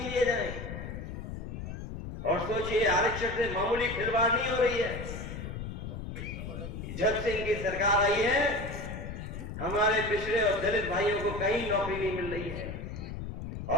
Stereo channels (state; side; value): noise; left; rumble, 8 dB below the sound